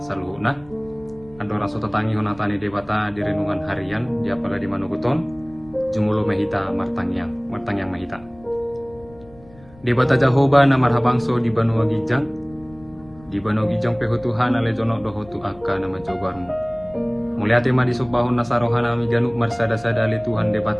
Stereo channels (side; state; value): left; noise; rumble, 24 dB below the sound